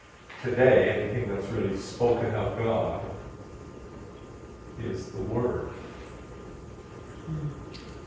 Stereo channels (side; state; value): both; identical; correlation 1.00